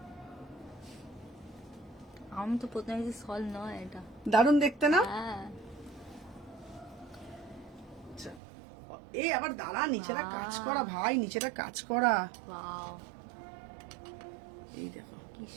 আমি তো প্রথমে দেখছি সল নয়, এটা দারুণ দেখতে না? হ্যাঁ আচ্ছা, এই আবার দাঁড়া, নিচেটা কাজ করা ভাই, নিচেটা কাজ করা, ওয়াও এই দেখো কি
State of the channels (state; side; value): drops out; left; at 8.4 s